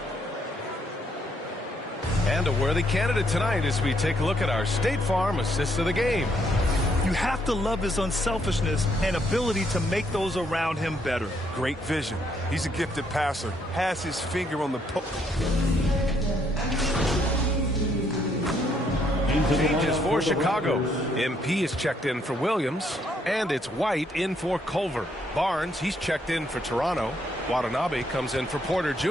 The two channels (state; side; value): normal; both; correlation 0.71